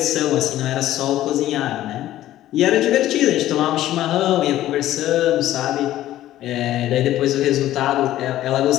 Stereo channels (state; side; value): quieter; right; 13.8 dB